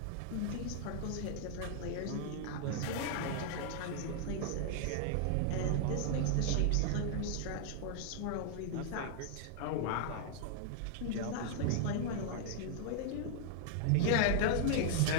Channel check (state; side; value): different; both; correlation -0.01